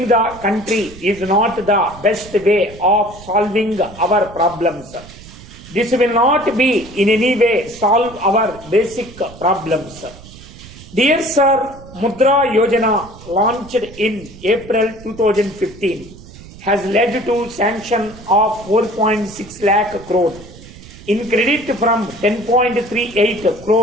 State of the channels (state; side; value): noise; right; rumble, 18 dB below the sound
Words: the country, is not the best way of solving our problems. This will not be in any way solve our basic problems. Dear Sir, Mudra Yojana, launched in April 2015, has led to sanction of 4.6 lakh crore in credit from 10.38